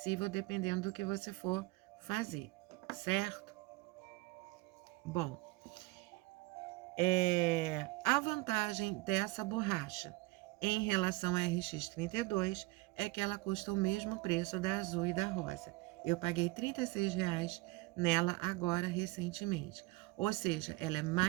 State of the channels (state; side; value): quieter; left; 22.5 dB